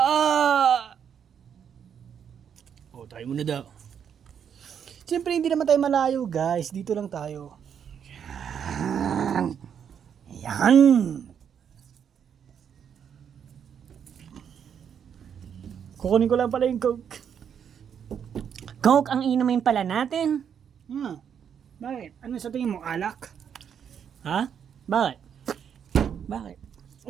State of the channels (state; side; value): quieter; left; 8.0 dB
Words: Tayo muna daw. Siyempre hindi naman tayo malayo guys, dito lang tayo. Yan. Kukunin ko lang pala yung Coke. Coke ang inumin pala natin. Bakit? Ano sa tingin mo, alak? Ha? Bakit? Bakit?